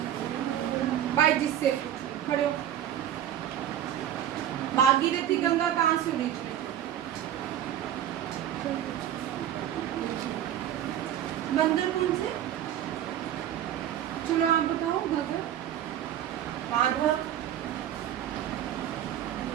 बाई जिससे खड़े हो, भागीरथी गंगा कहाँ से ओरिजिनेट? बंदरपुर से। चलो आप बताओ। गंगा, माधव,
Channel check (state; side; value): quieter; left; 11.0 dB